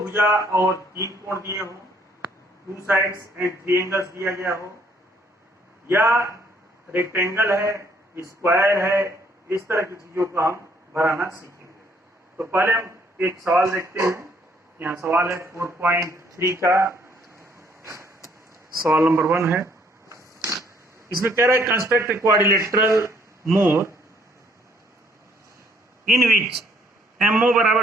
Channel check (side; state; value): both; normal; correlation 0.65